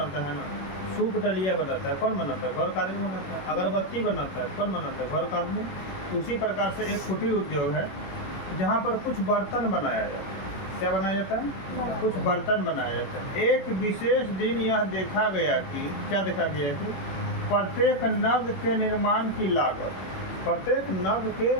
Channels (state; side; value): late; right; 21 ms